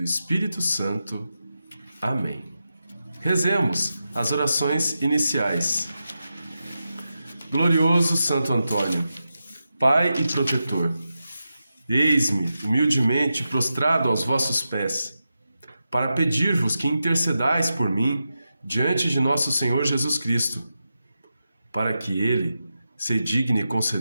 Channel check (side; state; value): both; inverted; correlation -0.89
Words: Espírito Santo. Amém. Rezemos as orações iniciais. Glorioso Santo Antônio, Pai e protetor, eis-me humildemente prostrado aos vossos pés, para pedir-vos que intercedais por mim diante de nosso Senhor Jesus Cristo, para que Ele se digne